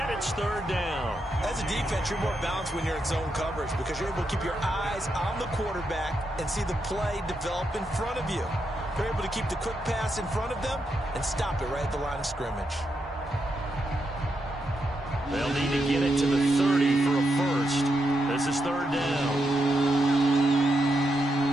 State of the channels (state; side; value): normal; both; correlation 0.83